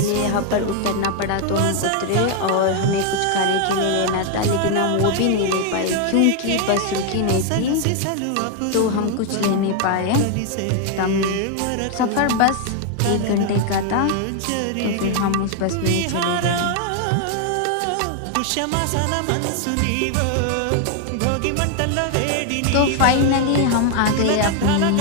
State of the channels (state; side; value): different; both; correlation 0.01